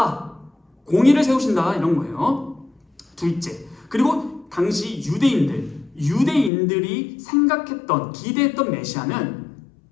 공의를 세우신다. 이런 거예요. 둘째, 그리고 당시 유대인들이 생각했던, 기대했던 메시아는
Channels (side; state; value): right; drops out; at 6.5 s